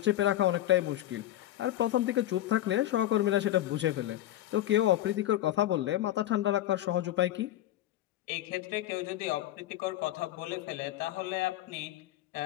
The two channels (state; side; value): quieter; right; 13.8 dB